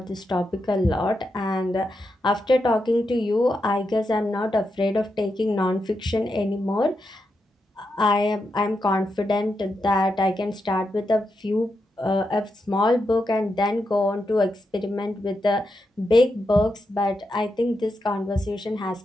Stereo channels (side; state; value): both; normal; correlation 0.85